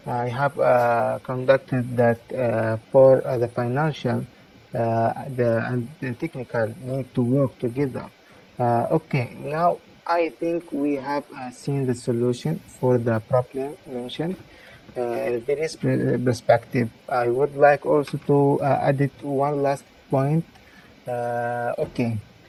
I have conducted that for the financial and the technical need to work together. Okay, now I think we have seen the solution for the problem mentioned. In this perspective, I would like also to add it one last point. Okay,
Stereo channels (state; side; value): identical; both; correlation 1.00